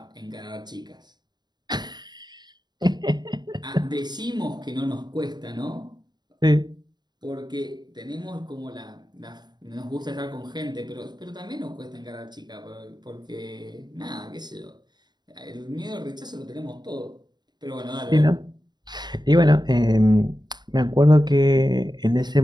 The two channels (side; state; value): left; late; 0.21 ms